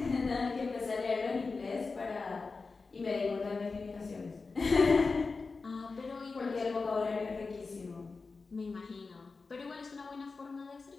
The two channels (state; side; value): quieter; right; 4.2 dB